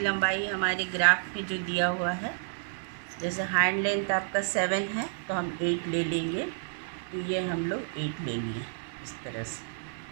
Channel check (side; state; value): left; silent; digital silence